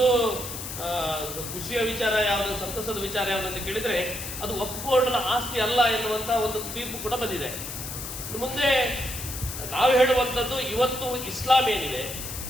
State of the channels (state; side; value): noise; left; hiss, 8 dB below the sound